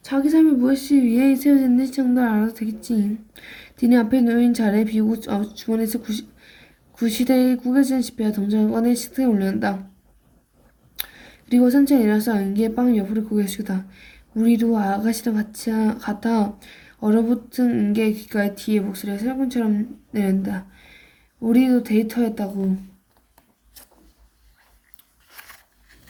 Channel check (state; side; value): identical; both; correlation 1.00